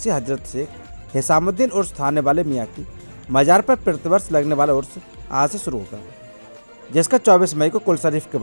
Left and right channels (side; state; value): both; inverted; correlation -1.00